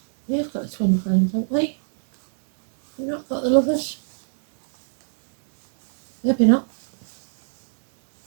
We've got the twin flames, haven't we? We've not got the lovers. Maybe not.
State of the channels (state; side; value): silent; left; digital silence